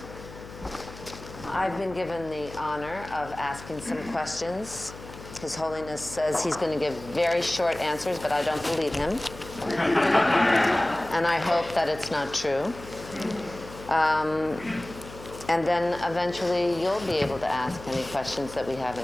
I've been given the honor of asking some questions. His Holiness says he's going to give very short answers, but I don't believe him. And I hope that it's not true. And then eventually you'll be able to ask any questions that we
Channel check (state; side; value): noise; left; hum, 15 dB below the sound